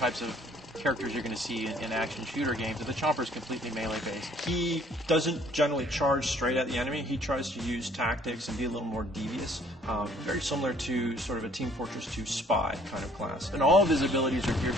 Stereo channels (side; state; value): both; normal; correlation 0.59